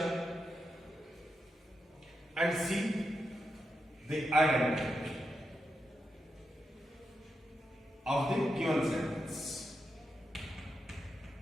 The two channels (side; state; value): both; normal; correlation 0.86